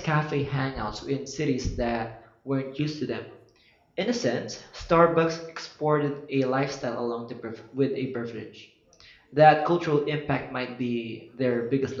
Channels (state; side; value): identical; both; correlation 1.00